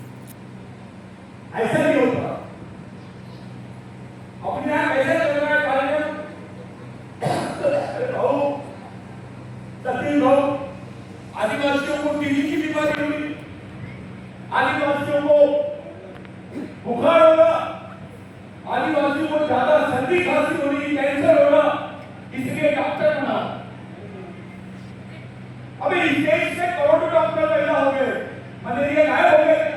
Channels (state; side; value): identical; both; correlation 1.00